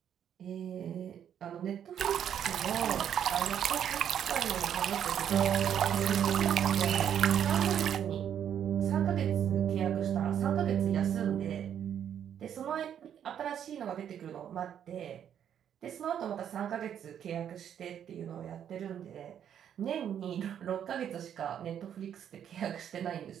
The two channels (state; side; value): quieter; left; 9.3 dB